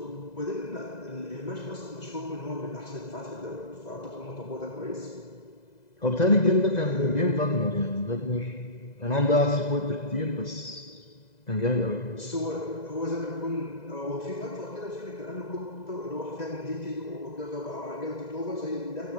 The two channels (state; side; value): late; right; 2.0 ms